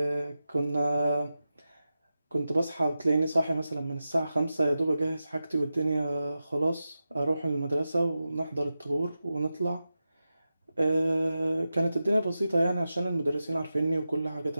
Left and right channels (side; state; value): both; inverted; correlation -0.92